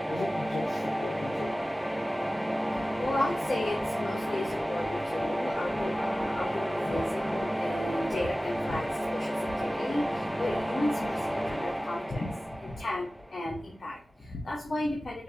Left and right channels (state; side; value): normal; both; correlation 0.96